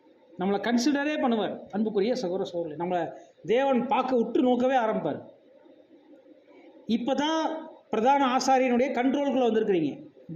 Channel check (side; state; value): both; identical; correlation 1.00